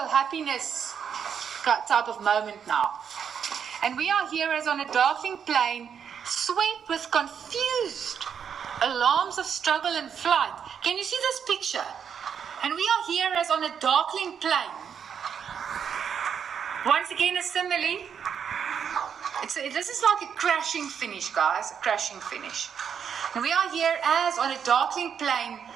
type of moment now. And we are here as on a darkening plane, swept with confused alarms of struggle and flight. Can you see this picture? And we are here as on a darkening plane. Once again, a simile. This is like a crashing finish, guys. A crashing finish. And we are here as on a darkening plane,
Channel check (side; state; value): left; quieter; 7.6 dB